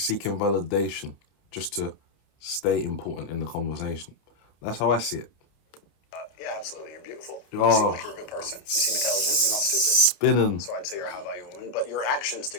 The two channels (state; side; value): late; right; 30 ms